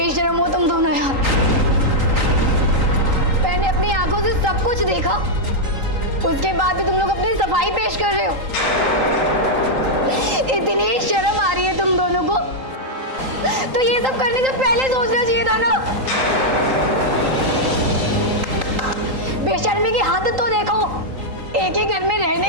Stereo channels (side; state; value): left; late; 3.8 ms